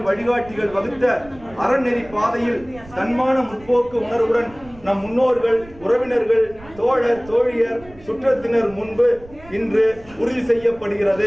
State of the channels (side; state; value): right; noise; rumble, 22 dB below the sound